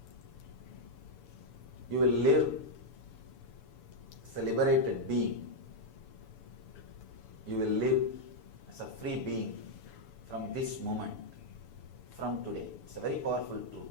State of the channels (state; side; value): late; right; 6.9 ms